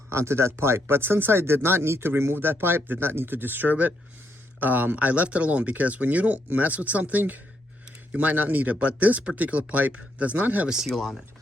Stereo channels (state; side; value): normal; both; correlation 0.77